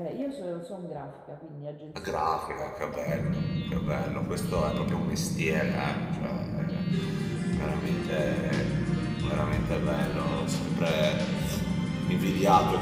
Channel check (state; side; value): identical; both; correlation 1.00